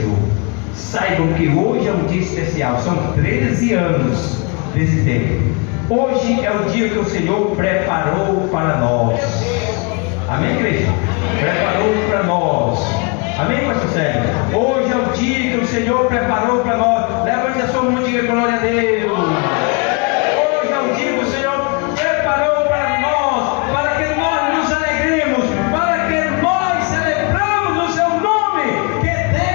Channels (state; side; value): quieter; right; 32.0 dB